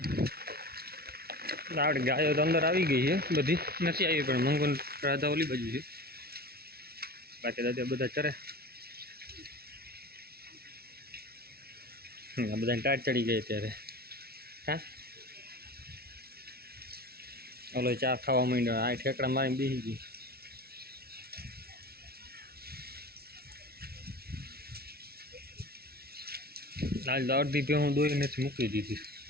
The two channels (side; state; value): left; late; 0.45 ms